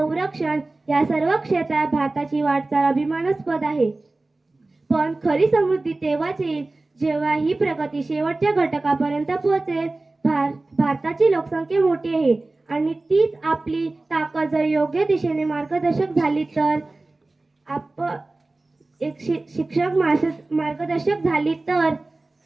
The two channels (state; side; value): quieter; left; 3.1 dB